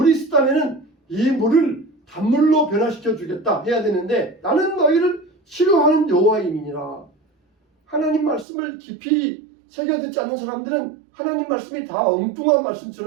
쓰다면은 이 물을 단물로 변화시켜 주겠다 해야 되는데 나는 너희를 치료하는 여호와임이니라. 하나님 말씀을 깊이 새겨 듣지 않는 사람들은 하나님 말씀이 다 엉뚱한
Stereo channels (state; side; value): drops out; left; at 8.5 s